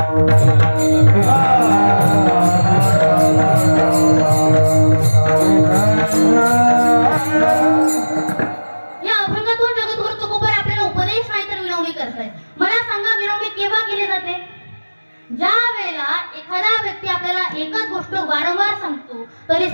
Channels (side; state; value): both; inverted; correlation -1.00